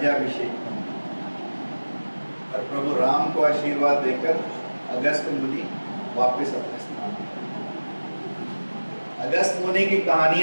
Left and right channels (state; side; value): inverted; both; correlation -1.00